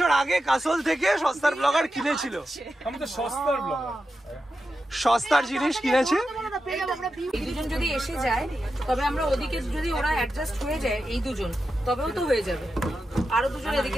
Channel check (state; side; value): normal; both; correlation 0.90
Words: আগে কাসল থেকে সস্তার ব্লগার কিনেছিল। আমি তো সস্তার ব্লগার, সস্তার জিনিস কিনেছে। এই দুজন যদি এসে যায় তবে আমরা ওদিকে যদি ওরা অ্যাডজাস্ট হয়ে যায় এই দুজন তবেও তো হয়ে যাবে, আরো দুজন